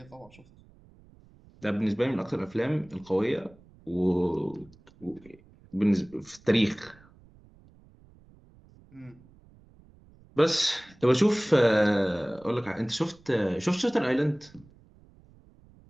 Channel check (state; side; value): noise; right; rumble, 26 dB below the sound